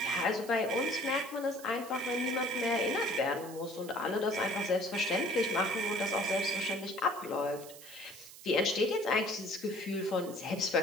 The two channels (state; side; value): noise; right; hiss, 17 dB below the sound